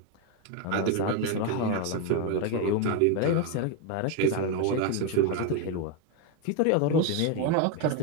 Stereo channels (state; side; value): different; both; correlation 0.02